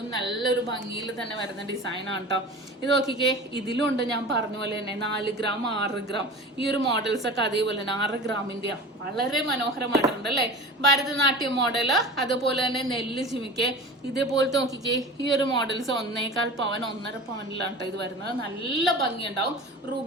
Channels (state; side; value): normal; both; correlation 0.35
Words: നല്ലൊരു ഭംഗിയിൽ തന്നെ വരുന്ന ഡിസൈൻ ആണ് കേട്ടോ. ഇത് നോക്കിക്കേ, ഇതിലും ഉണ്ട് ഞാൻ പറഞ്ഞ പോലെ തന്നെ 4 ഗ്രാം 6 ഗ്രാം ഈ ഒരു മോഡൽസ് ഒക്കെ അതേപോലെ തന്നെ 6 ഗ്രാമിന്റെ വളരെ മനോഹരമായിട്ടുണ്ട് അല്ലെ. ഭരതനാട്യം മോഡല്, അതുപോലെ തന്നെ നെല്ല് ജിമിക്ക്, ഇതേപോലത്തെ നോക്കിക്കേ ഈ ഒരു മോഡൽസ് 1.25 പവൻ 1.5 പവനിലാണ് കേട്ടോ ഇത് വരുന്നത്. നല്ല ഭംഗിയുണ്ടാവും.